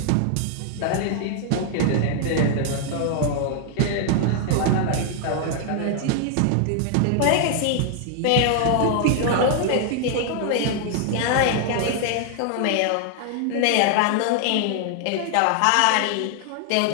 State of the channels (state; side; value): different; both; correlation 0.00